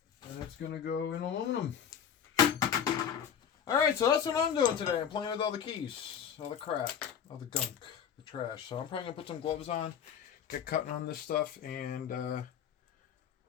and it's going to go in aluminum. Alright, so that's what I'm doing today. I'm playing with all the keys, all the crap, all the gunk, the trash. So I'm probably going to put some gloves on, get cutting on this stuff, and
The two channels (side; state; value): right; quieter; 8.2 dB